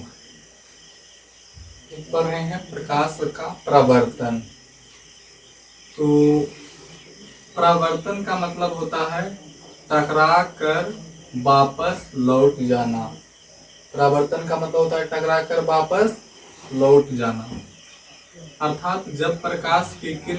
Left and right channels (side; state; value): both; identical; correlation 1.00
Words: पढ़ रहे हैं प्रकाश का प्रवर्तन। तो प्रवर्तन का मतलब होता है टकरा कर वापस लौट जाना। प्रवर्तन का मतलब होता है टकरा कर वापस लौट जाना। अर्थात जब प्रकाश की